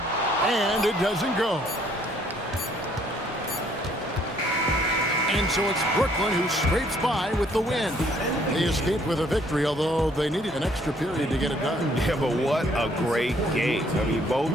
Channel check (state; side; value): normal; both; correlation 0.64